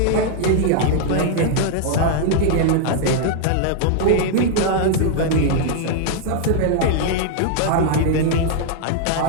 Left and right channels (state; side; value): different; both; correlation 0.00